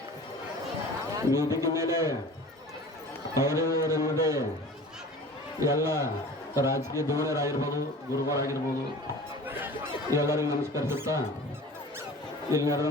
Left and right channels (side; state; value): both; normal; correlation 0.41